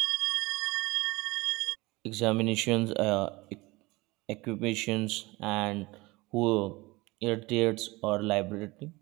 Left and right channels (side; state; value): left; quieter; 22.3 dB